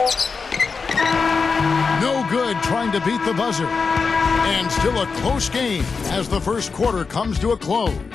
No good trying to beat the buzzer. And still a close game as the first quarter comes to a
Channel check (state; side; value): quieter; right; 4.9 dB